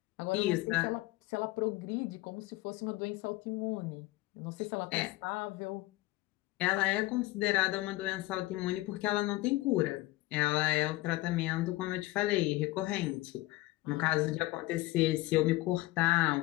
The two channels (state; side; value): quieter; right; 19.1 dB